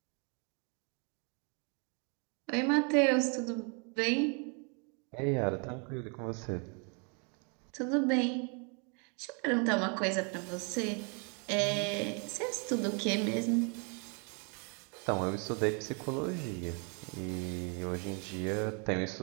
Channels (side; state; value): left; quieter; 36.3 dB